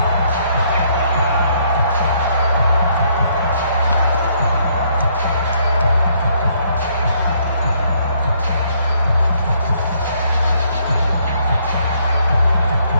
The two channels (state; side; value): inverted; both; correlation -0.68